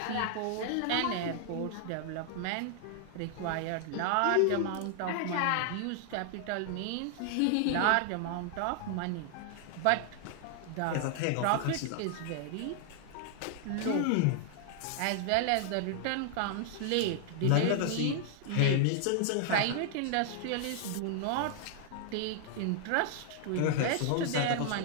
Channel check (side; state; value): both; different; correlation 0.00